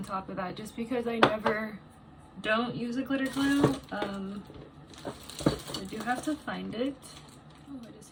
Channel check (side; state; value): both; identical; correlation 1.00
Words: top of that just because I never don't use a glitter glue. I do have to find it. Oh, I